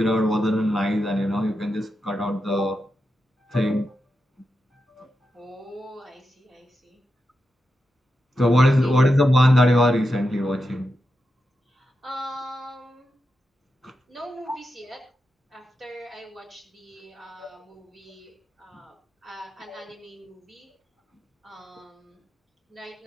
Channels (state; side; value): normal; both; correlation 0.88